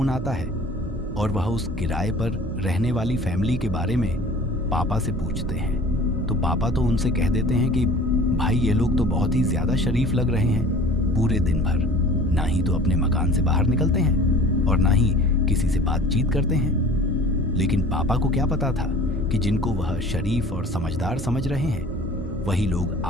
आता है और वह उस किराए पर रहने वाली फैमिली के बारे में पापा से पूछते हैं। तो पापा तो उनसे कह देते हैं कि भाई ये लोग तो बहुत ही ज़्यादा शरीफ लग रहे हैं, पूरे दिन भर ना ही तो अपने मकान से बाहर निकलते हैं और ना ही किसी से बातचीत करते हैं। लेकिन पापा को क्या पता था कि जिनको वह शरीफ और समझदार समझ रहे हैं वही लोग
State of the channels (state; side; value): normal; both; correlation 0.45